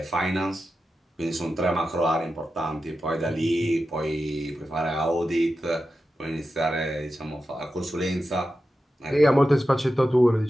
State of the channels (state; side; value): normal; both; correlation 0.91